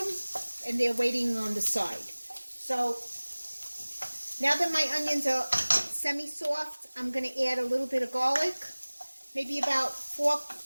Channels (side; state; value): both; inverted; correlation -1.00